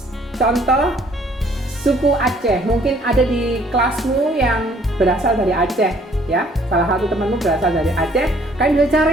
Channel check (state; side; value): normal; both; correlation 0.60